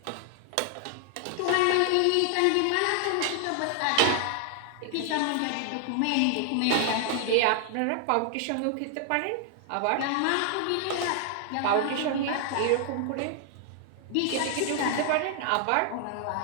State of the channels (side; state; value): both; different; correlation 0.00